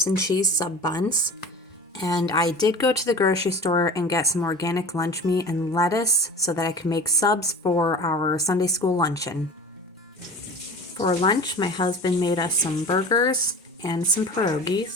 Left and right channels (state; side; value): normal; both; correlation 0.36